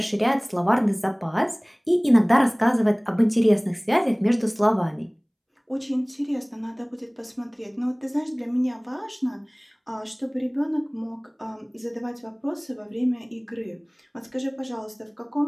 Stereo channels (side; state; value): both; identical; correlation 1.00